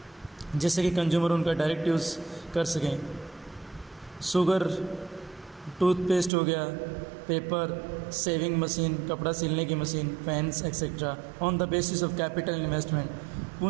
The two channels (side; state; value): left; drops out; at 6.3 s